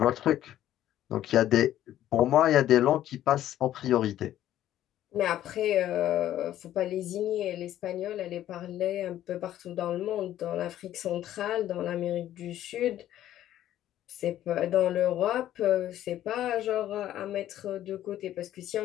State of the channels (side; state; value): right; quieter; 12.5 dB